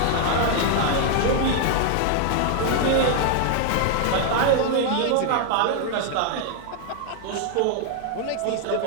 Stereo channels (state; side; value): different; both; correlation 0.00